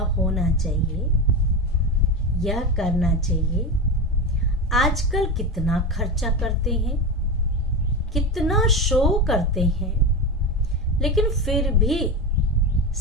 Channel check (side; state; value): both; normal; correlation 0.20